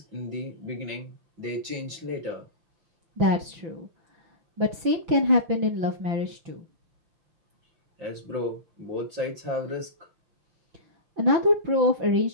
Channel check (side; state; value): left; late; 5.9 ms